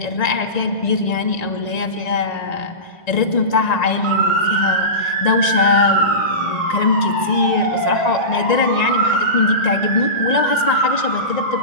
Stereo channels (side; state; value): right; late; 1.9 ms